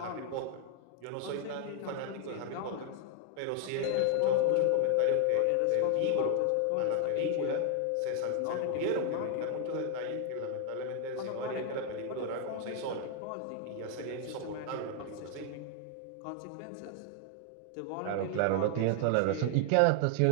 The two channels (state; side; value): different; both; correlation 0.00